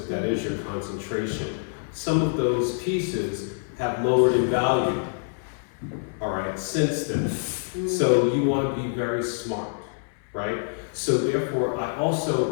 that is your concentration. Some of those pieces have lowered in value, all right, since then. So you want to be very smart, right? So therefore,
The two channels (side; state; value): right; silent; 59 dB below the other